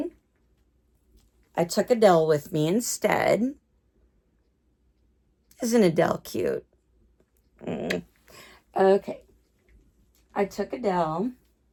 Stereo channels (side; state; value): both; identical; correlation 1.00